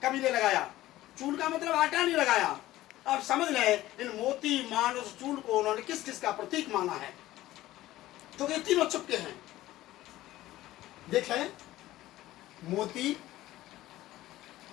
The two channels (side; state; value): right; quieter; 15.7 dB